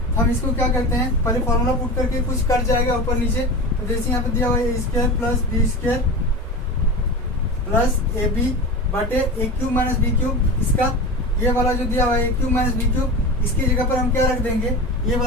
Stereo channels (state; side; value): normal; both; correlation 0.28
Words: हम इसको क्या करते हैं, पहले फॉर्मूला पुट करके कुछ कट जाएगा ऊपर नीचे। तो जैसे यहाँ पे दिया हुआ है ए square plus B square plus A B बटे a cube minus B cube, इसका ये वाला जो दिया हुआ है ए क्यूब माइनस बी क्यूब, इसकी जगह पर हम क्या रख देंगे, ये